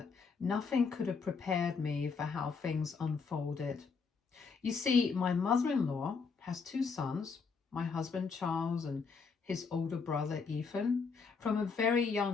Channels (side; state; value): right; quieter; 5.1 dB